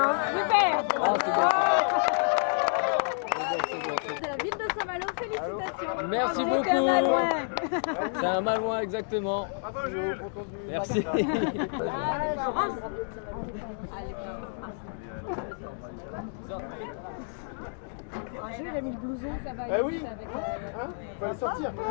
Super. Ah, c'est bon. De la ville de Saint-Malo, félicitations. Merci beaucoup. C'est un Malouin exactement. Bravo Jules. Merci. Jules a mis le blouson, ça va. Eh oui. Faut aller sortir.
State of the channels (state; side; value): silent; right; digital silence